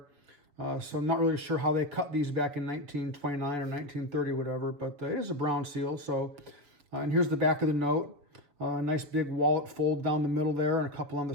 So I'm not really sure how they cut these back in 1929 or 1930, whatever, but it is a brown seal. So, and here's the back of the note. A nice big wallet fold down the middle there and a couple on the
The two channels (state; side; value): late; left; 6.7 ms